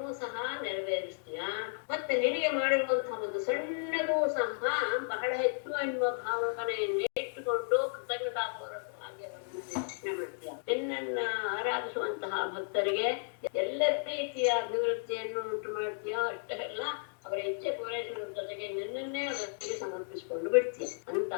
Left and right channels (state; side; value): silent; right; digital silence